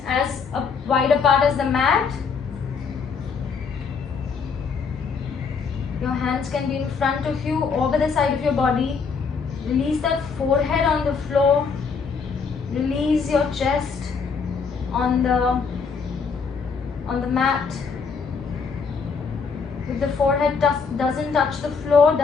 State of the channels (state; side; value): quieter; right; 5.5 dB